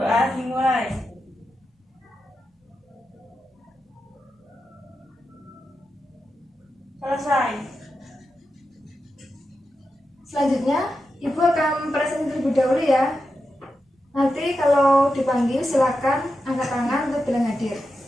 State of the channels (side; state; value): both; normal; correlation 0.89